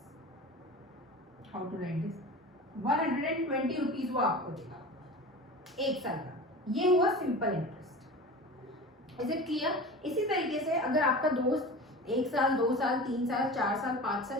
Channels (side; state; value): both; normal; correlation 0.34